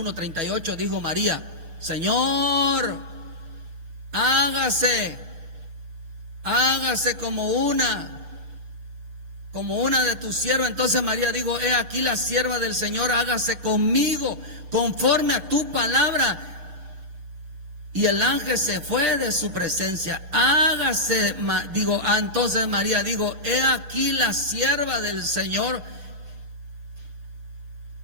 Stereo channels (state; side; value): late; left; 6.7 ms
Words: dijo María: Señor, hágase como una de tus siervas. Entonces María dijo: he aquí la sierva del Señor, hágase conmigo conforme a tu palabra. Y el ángel se fue de su presencia. Entonces María dijo: he aquí la sierva del Señor.